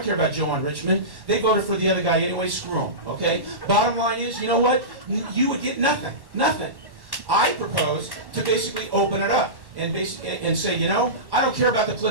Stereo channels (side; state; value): left; late; 1.1 ms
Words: care about Joe on Richmond, they voted for the other guy anyway, screw him, okay? Bottom line is, you know what, you would get nothing, nothing. I propose to basically open it up and say, you know, I don't care about the